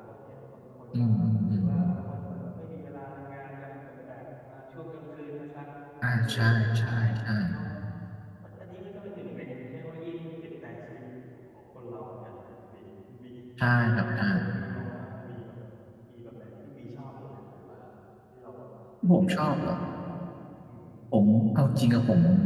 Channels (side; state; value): both; identical; correlation 1.00